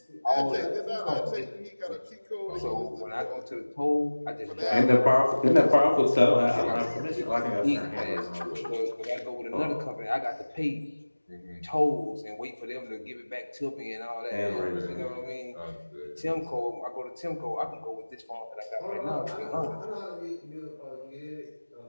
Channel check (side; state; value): both; inverted; correlation -1.00